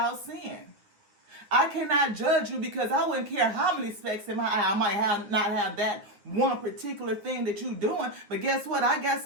sin. I cannot judge you because I wouldn't care how many specks in my eye. I might not have that one particular thing that you're doing. But guess what? I got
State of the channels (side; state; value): left; late; 9.6 ms